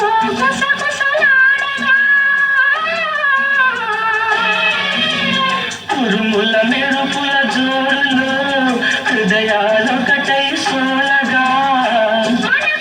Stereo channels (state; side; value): identical; both; correlation 1.00